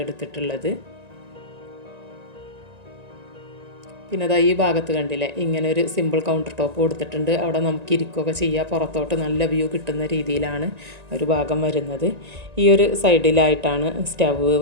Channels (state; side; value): late; left; 1.9 ms